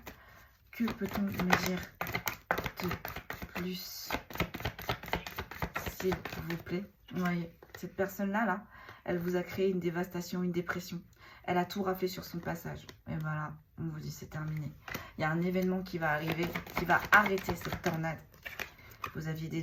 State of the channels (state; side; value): identical; both; correlation 1.00